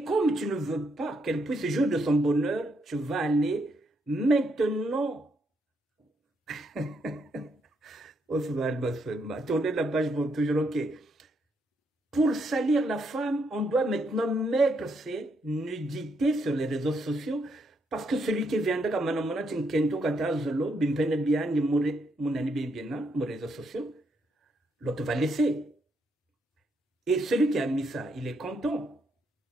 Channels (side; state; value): both; normal; correlation 0.76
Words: comme tu ne veux pas qu'elle puisse jouir de son bonheur, tu vas aller maintenant. Tournez la page pour toujours, ok. Pour salir la femme, on doit maintenant mettre ses nudités sur les réseaux sociaux. Parce que celui qui viendra comme Manamona Tinkento Katazolo, Bimpene Bian, Mounani Bibiana, mon réseaux sociaux, l'autre va laisser. Et celui qui a mis ça, il est content.